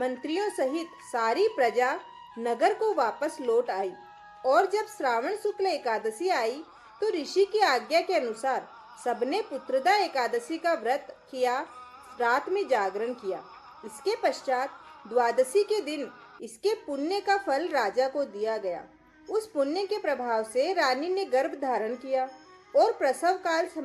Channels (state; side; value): identical; both; correlation 1.00